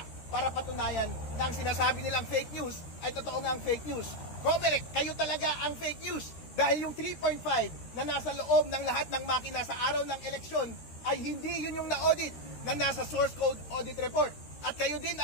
para patunayan na ang sinasabi nilang fake news ay totoo ngang fake news. COMELEC, kayo talaga ang fake news dahil yung 3.5 na nasa loob ng lahat ng makina sa araw ng eleksyon ay hindi yun yung na-audit na nasa source code audit report. At kayo din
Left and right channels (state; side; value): late; right; 13 ms